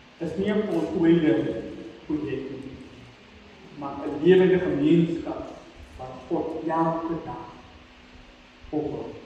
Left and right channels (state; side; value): identical; both; correlation 1.00